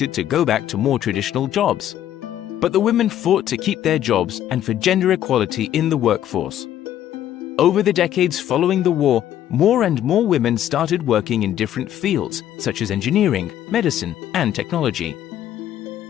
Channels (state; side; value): quieter; right; 11.4 dB